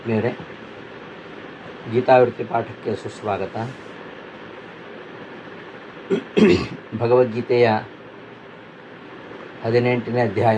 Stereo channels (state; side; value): identical; both; correlation 1.00